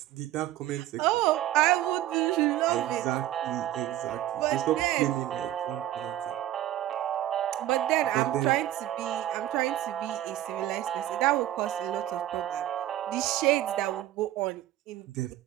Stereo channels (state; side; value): quieter; left; 13.5 dB